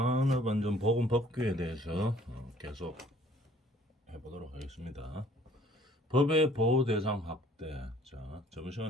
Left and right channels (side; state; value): both; normal; correlation 0.56